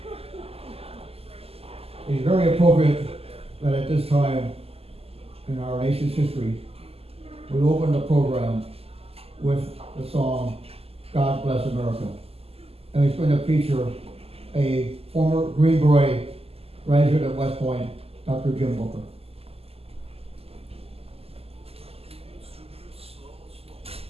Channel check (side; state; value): left; late; 0.29 ms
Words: It's very appropriate that at this time in our nation's history, we open the program with the song, God Bless America. And it's going to feature a former Green Beret graduate at West Point, Dr. Jim Booker.